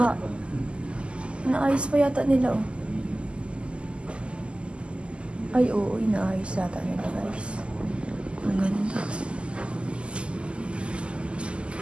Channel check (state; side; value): late; left; 0.053 ms